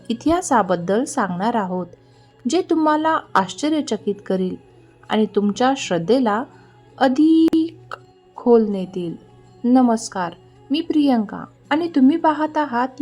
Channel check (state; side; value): identical; both; correlation 1.00